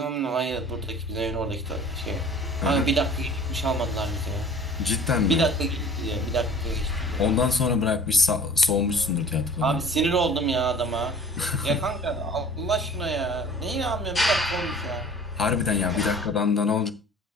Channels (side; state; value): both; normal; correlation 0.46